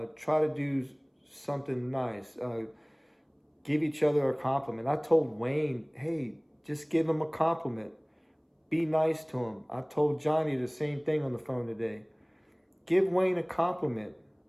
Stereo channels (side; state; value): both; identical; correlation 1.00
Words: to do something nice, give each other a compliment. I told Wayne, hey, just give him a compliment. Be nice to him. I told Johnny the same thing on the phone today. Give Wayne a compliment.